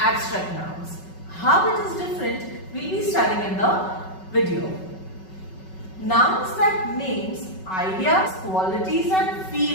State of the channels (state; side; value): late; right; 5.3 ms